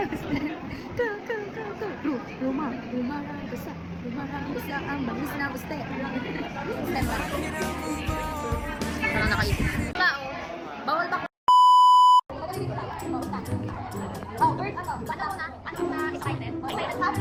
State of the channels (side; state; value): both; identical; correlation 1.00